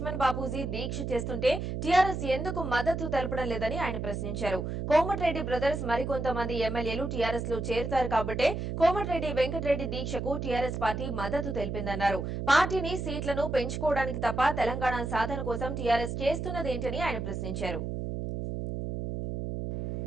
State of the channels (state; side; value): noise; right; hum, 3 dB below the sound